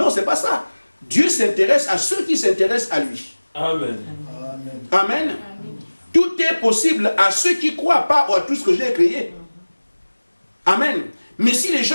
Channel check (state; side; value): inverted; both; correlation -1.00